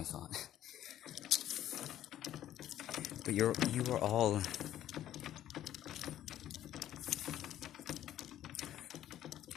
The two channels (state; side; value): quieter; right; 12.1 dB